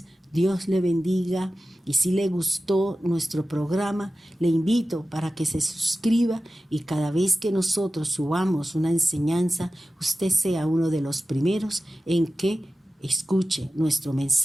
Dios le bendiga, y si le gustó nuestro programa, le invito para que se suscriba y cada vez que nosotros subamos una enseñanza, usted sea uno de los primeros en que escuche nuestro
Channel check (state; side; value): normal; both; correlation 0.95